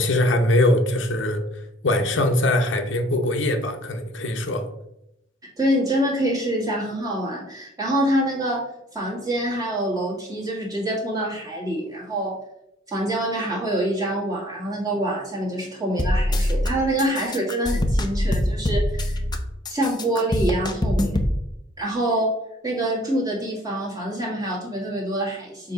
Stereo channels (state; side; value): normal; both; correlation 0.55